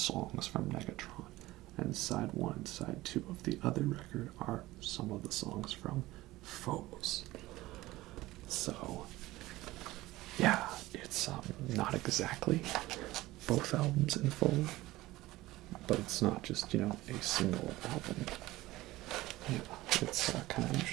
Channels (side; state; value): left; quieter; 17.9 dB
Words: from Negatron, and side 1 and side 2 of the other record are some of the songs from Phobos. So yeah, it's not exactly both albums in full, but it's not just, a single album. Yeah, it's kind of